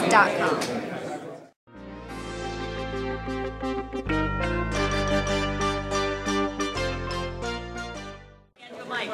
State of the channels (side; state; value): both; identical; correlation 1.00